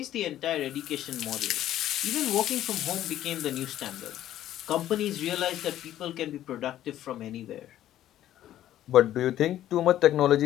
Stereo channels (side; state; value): right; quieter; 12.5 dB